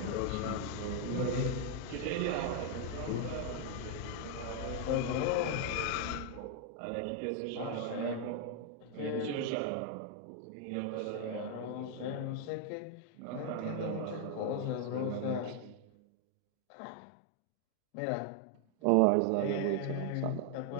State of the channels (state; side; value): different; both; correlation 0.00